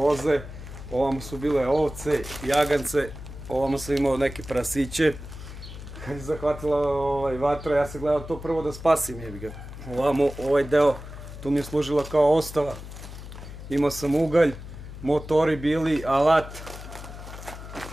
ovamo su bile ovce, jagance, ovamo sam imao neke prasiće. Kad je zahvatila vatra, ja sam gledao to prvo da spasim, jebi ga. Ovamo, ovaj deo, tu mi je služila kao ostava. Imao sam ugalj, motori bili, alat,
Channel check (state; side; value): noise; left; hum, 12 dB below the sound